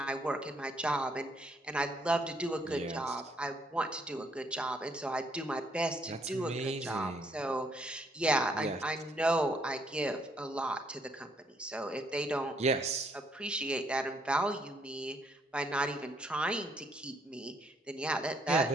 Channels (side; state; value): both; normal; correlation 0.69